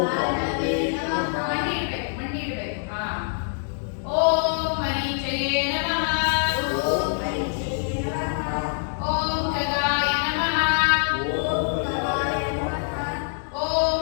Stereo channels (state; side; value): silent; right; digital silence